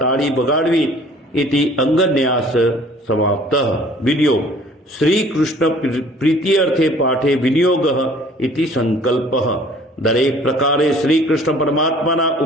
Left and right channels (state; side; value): normal; both; correlation 0.52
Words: વગાડવી. ઇતિ અંગન્યાસ સમાપ્ત. વિડિયો શ્રી કૃષ્ણ પ્રીત્યર્થે પાઠે વિનિયોગ ઇતિ સંકલ્પ. દરેક પ્રકારે શ્રી કૃષ્ણ પરમાત્માના